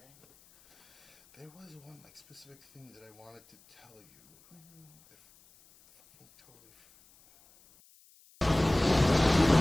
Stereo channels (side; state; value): left; noise; hiss, 29 dB below the sound